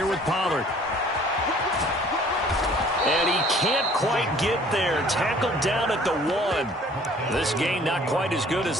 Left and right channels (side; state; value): both; normal; correlation 0.54